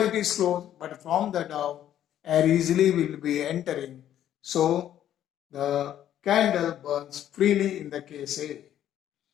it is closed, but from the down air easily will be entering. So the candle burns freely in the case A.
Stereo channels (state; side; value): quieter; right; 11.2 dB